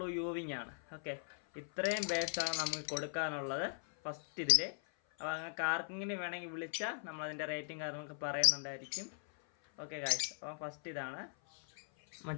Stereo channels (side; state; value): right; silent; 52 dB below the other